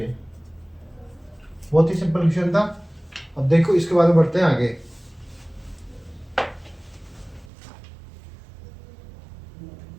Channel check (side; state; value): left; drops out; at 7.5 s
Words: बहुत ही सिंपल क्वेश्चन था। अब देखो इसके बाद में बढ़ते हैं आगे।